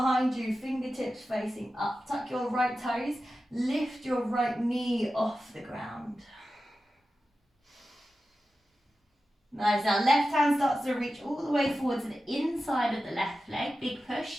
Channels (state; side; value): normal; both; correlation 0.93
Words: you, fingertips facing up. Tuck your right toes. Lift your right knee off the ground. Nice. Now left hand starts to reach all the way forward to the inside of the left leg. Big